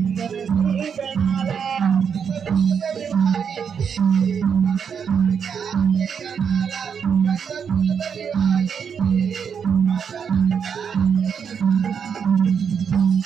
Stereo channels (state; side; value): quieter; left; 7.0 dB